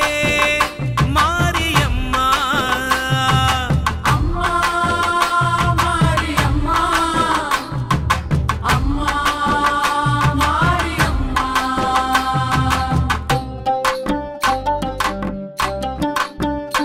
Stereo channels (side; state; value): both; identical; correlation 1.00